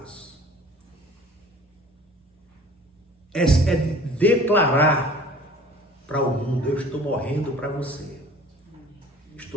é de declarar para o mundo: eu estou morrendo para você,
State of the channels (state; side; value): normal; both; correlation 0.47